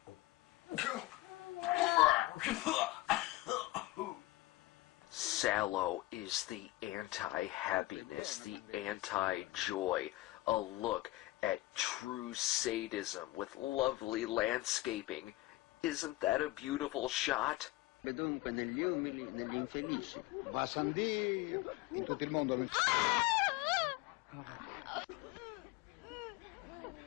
Salo is the anti-happiness, the anti-joy, a look at true sadism with lovely landscaping. Isn't that a beautiful shot? Dunque negli umili, negli infelici. Va san Dio, in tutto il mondo.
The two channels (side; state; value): right; quieter; 18.4 dB